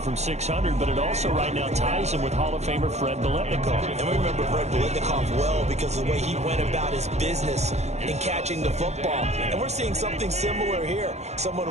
600, but it also right now ties him with Hall of Famer Fred Biletnikoff. And we remember Fred Biletnikoff well because of the way he went about his business in catching the football. And we're seeing something similar here. Someone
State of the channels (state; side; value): late; left; 0.32 ms